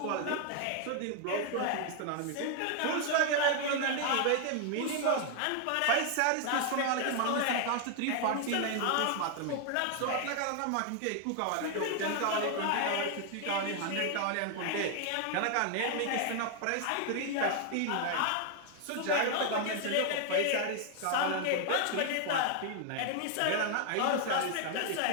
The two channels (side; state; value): both; different; correlation 0.00